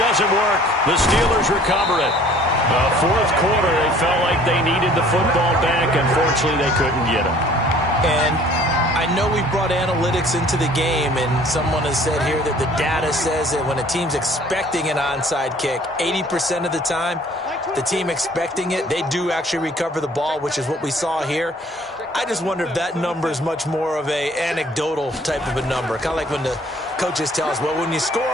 work. The Steelers recover it. The 4th quarter, they felt like they needed the football back. Unfortunately, they couldn't get it. And I know we brought analytics into the game, and someone has said here that the data says that when a team's expecting an onside kick, 80% of the time, the team expecting it, they do actually recover the ball, which is what we saw here. I just wonder if that number is much more of a anecdotal type of a number. Kind of like when the coaches tell us, well, when you score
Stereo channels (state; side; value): normal; both; correlation 0.54